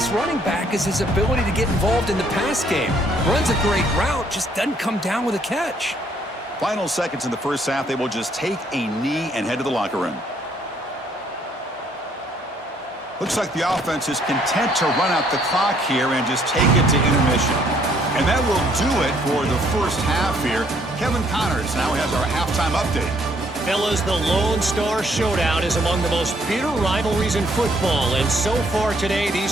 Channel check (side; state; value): both; normal; correlation 0.66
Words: running back is his ability to get involved in the pass game. Runs a great route, just doesn't come down with a catch. Final seconds in the first half, they will just take a knee and head to the locker room. Looks like the offense is content to run out the clock here and just take it to intermission. And that will do it for the first half here. Kevin Connors now has our halftime update. Fellas, the Lone Star Showdown is among the most bitter rivalries in football, and so far today,